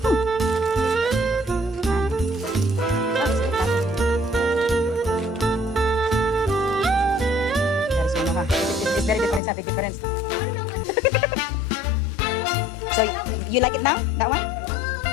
It's very different, sabi difference. So, you like it now? That one?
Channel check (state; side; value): drops out; right; at 9.4 s